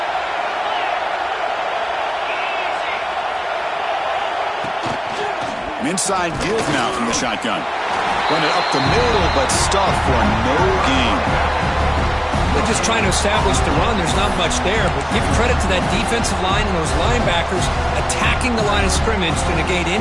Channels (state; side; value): identical; both; correlation 1.00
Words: Inside give now from the shotgun. Run it up the middle, but stuff for no gain. They're just trying to establish the run. There's not much there, but give credit to that defensive line and those linebackers attacking the line of scrimmage to negate